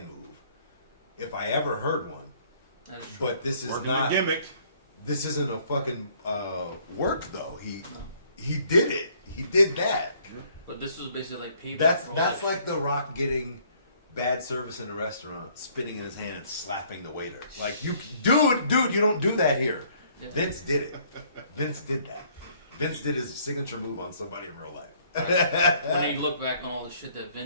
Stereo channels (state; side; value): inverted; both; correlation -0.62